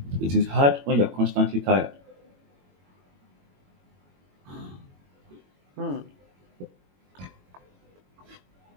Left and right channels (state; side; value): late; left; 22 ms